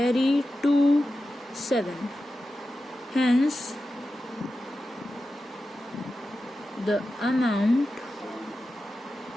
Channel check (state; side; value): normal; both; correlation 0.92